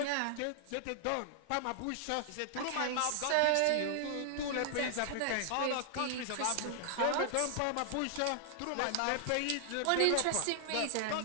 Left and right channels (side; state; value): both; different; correlation 0.00